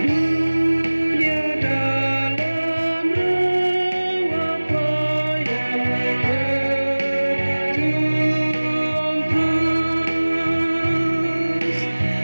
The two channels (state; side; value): inverted; both; correlation -1.00